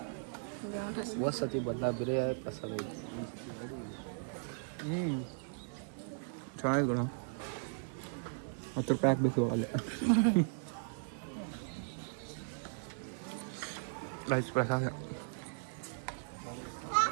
ಹೋದ ಸತಿ ಬದಲ ಬೇರೆ ಪ್ರಸಾದ ಐತಿ. ಚೆನ್ನಾಗಿದೆ ಗುಣ. 10 ರೂಪಾಯಿ ಹಾಕ್ಬೇಕು ಅಲ್ಲೇ. ರೈಸ್ ಪ್ರಸಾದ.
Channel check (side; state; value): left; silent; 53 dB below the other